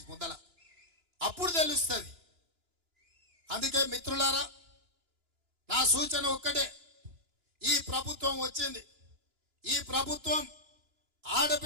ముందల. అప్పుడు తెలుస్తుంది. అందుకే మిత్రులారా, నా సూచన ఒక్కటే, ఈ ప్రభుత్వం వచ్చింది, ఈ ప్రభుత్వం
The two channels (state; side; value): late; left; 2.9 ms